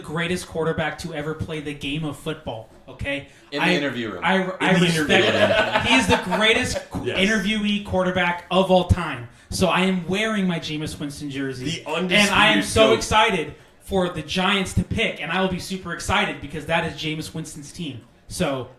quarterback to ever play the game of football. Okay, In the interview room. I the respect interview him. He is the greatest Yes. interviewee quarterback of all time. So I am wearing my Jameis Winston jersey, The and I am undisputed so GOAT. excited for the Giants to pick, and I will be super excited because that is Jameis Winston's team. So,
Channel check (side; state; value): both; identical; correlation 1.00